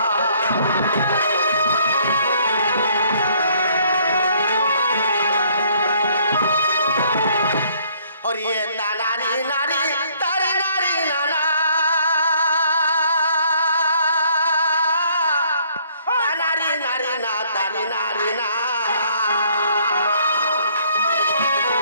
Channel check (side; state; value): both; inverted; correlation -0.63